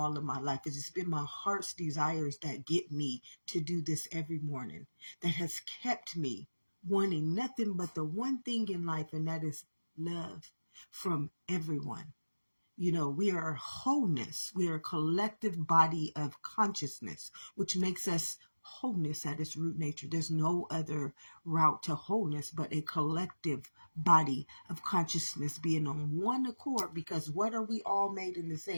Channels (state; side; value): inverted; both; correlation -1.00